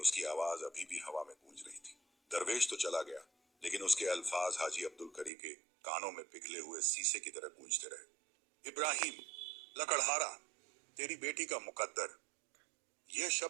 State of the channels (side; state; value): left; drops out; at 5.3 s